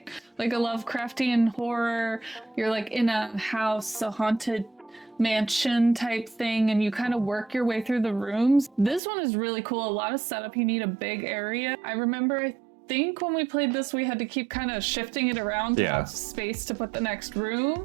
Like a Lovecraftian horror. You're in a house, a haunted mansion type thing, and you kind of work your way through the rooms. This one is really cool. A lot of setup. You need a big area. I remember, I think when we played this, we had to keep kind of shifting it around to have space to put the next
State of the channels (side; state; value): left; drops out; at 9.0 s